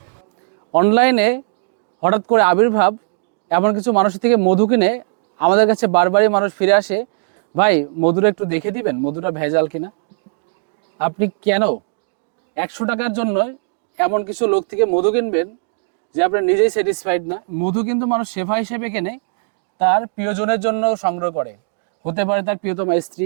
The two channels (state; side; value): silent; left; digital silence